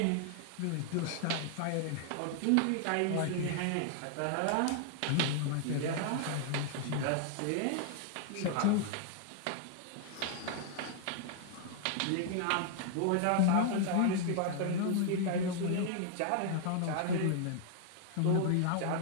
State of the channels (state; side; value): different; both; correlation 0.00